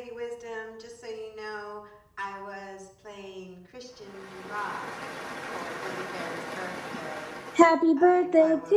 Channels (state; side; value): identical; both; correlation 1.00